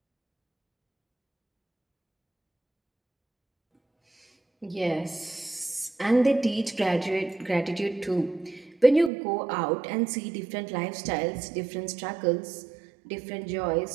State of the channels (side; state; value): left; drops out; at 9.1 s